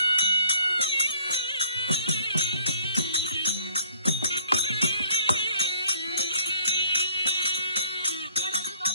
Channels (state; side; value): inverted; both; correlation -0.59